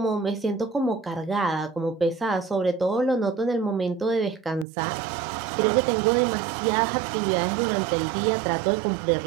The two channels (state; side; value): drops out; left; at 4.7 s